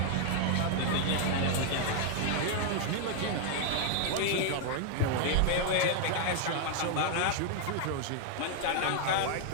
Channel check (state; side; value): different; both; correlation 0.00